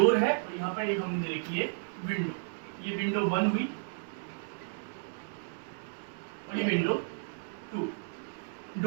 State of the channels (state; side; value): silent; left; digital silence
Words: है और यहाँ पर एक हमने देखी है विंडो। ये विंडो 1 हुई और ये विंडो 2।